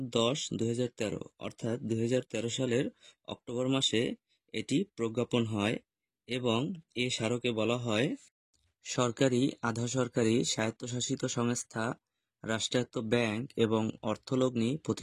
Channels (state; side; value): identical; both; correlation 1.00